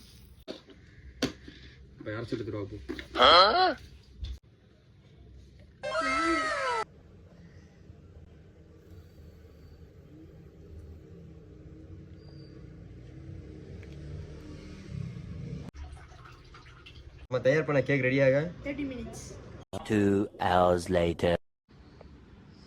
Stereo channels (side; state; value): both; identical; correlation 1.00